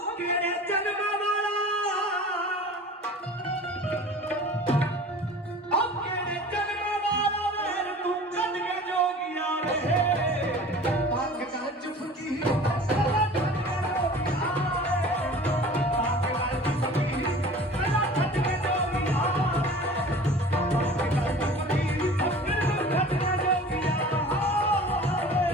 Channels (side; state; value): both; normal; correlation 0.42